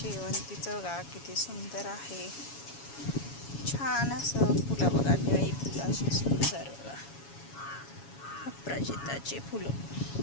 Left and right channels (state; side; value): late; right; 7.2 ms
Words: बघा किती सुंदर आहे. छान असं फुलं बघा, निळी फुलं अशी सुंदर बघा. अपराजिताचे फुलं,